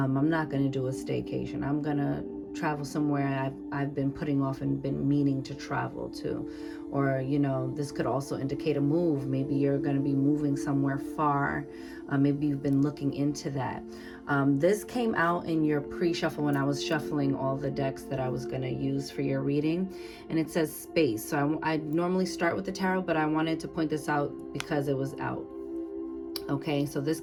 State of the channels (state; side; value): identical; both; correlation 1.00